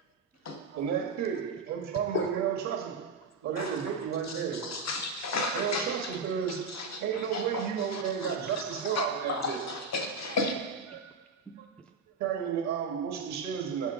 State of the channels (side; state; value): left; quieter; 3.9 dB